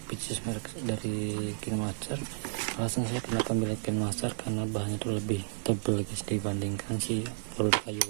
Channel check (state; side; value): silent; left; digital silence